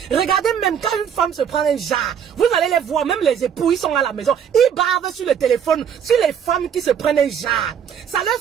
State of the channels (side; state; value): left; quieter; 8.1 dB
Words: Regardez même quand une femme se prend un jar, vous allez les voir, même les époux, ils sont à la maison, ils bavent sur le téléphone, sur les femmes qui se prennent un jar. Ça leur